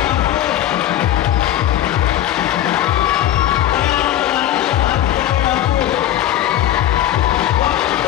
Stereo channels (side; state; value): right; quieter; 12.4 dB